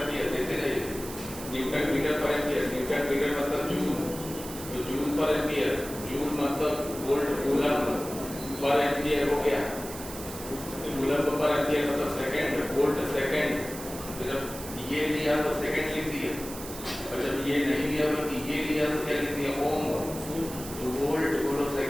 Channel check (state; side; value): noise; right; hiss, 12 dB below the sound